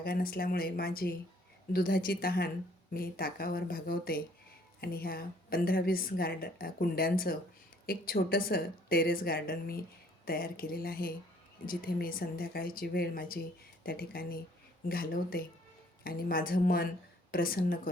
नसल्यामुळे माझी दुधाची तहान मी ताकावर भागवते आणि ह्या 15-20 कुंड्यांचं एक छोटंसं टेरेस गार्डन मी तयार केलेलं आहे, जिथे मी संध्याकाळची वेळ माझी त्या ठिकाणी घालवते आणि माझं मन प्रसन्न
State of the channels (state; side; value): normal; both; correlation 0.60